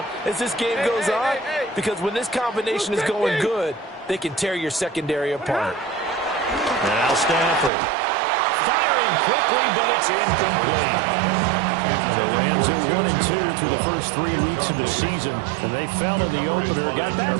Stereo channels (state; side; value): drops out; left; at 7.7 s